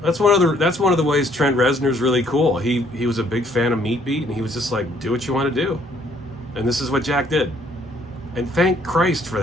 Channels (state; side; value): normal; both; correlation 0.64